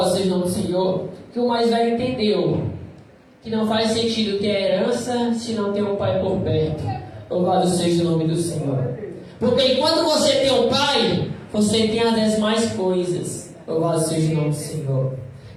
seja o nome do Senhor, que o mais velho entendeu que não faz sentido ter herança se não tem um pai por perto. Louvado seja o nome do Senhor. Porque enquanto você tem um pai, você tem as demais coisas. Louvado seja o nome do Senhor.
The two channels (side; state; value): both; identical; correlation 1.00